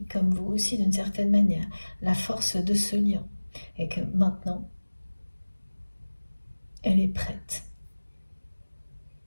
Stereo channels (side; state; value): both; inverted; correlation -1.00